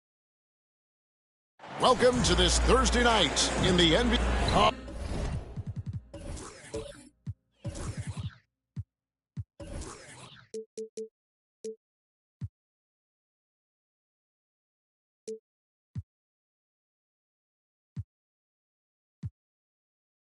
Welcome to this Thursday night in the NBA.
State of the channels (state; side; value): identical; both; correlation 1.00